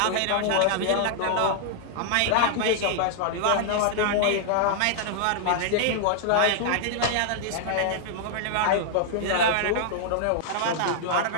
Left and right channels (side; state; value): both; different; correlation -0.01